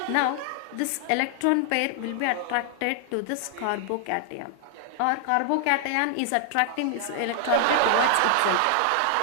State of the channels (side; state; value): both; different; correlation 0.00